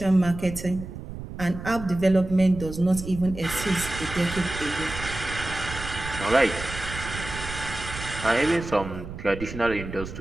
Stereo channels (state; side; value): noise; right; rumble, 10 dB below the sound